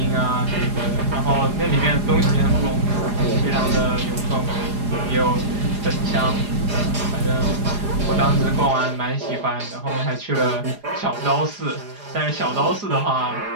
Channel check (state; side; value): late; left; 4.9 ms